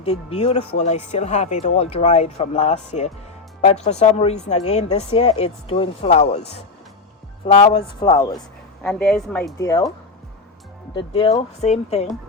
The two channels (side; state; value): right; quieter; 3.9 dB